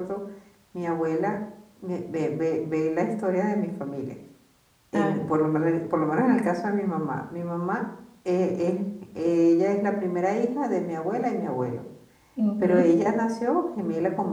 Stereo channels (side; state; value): both; identical; correlation 1.00